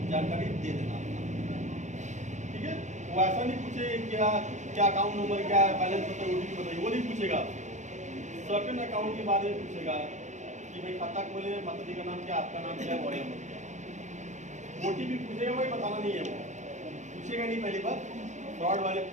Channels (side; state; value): left; late; 0.35 ms